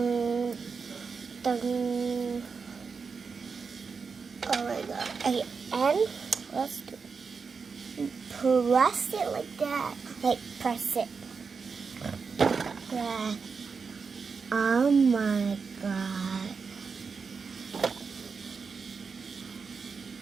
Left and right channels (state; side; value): quieter; left; 5.2 dB